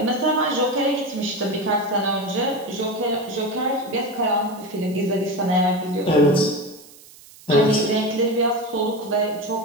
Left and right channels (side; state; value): right; noise; hiss, 22 dB below the sound